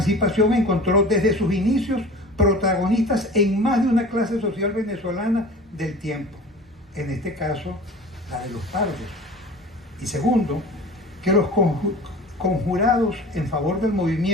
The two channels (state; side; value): normal; both; correlation 0.40